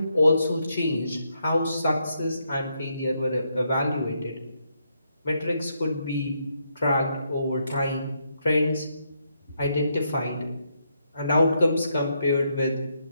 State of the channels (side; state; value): both; inverted; correlation -0.78